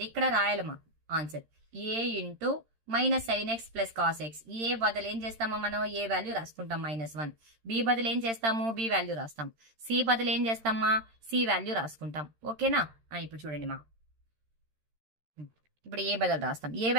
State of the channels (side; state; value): left; late; 13 ms